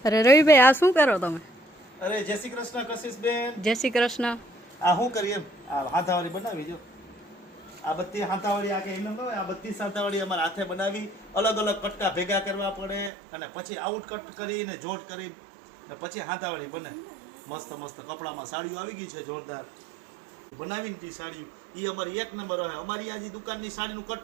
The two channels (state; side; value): drops out; left; at 13.1 s